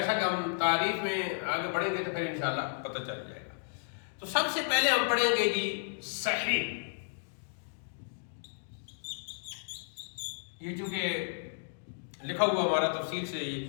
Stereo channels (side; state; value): right; silent; digital silence